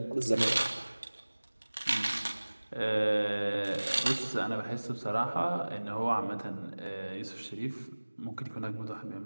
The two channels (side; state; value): both; inverted; correlation -1.00